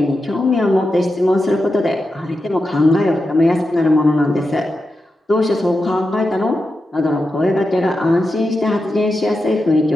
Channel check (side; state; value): both; normal; correlation 0.89